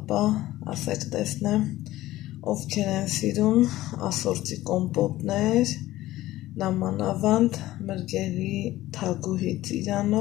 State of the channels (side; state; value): right; quieter; 15.9 dB